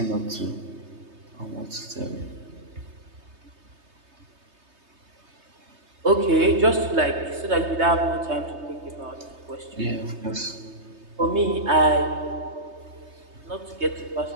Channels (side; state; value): left; late; 3.2 ms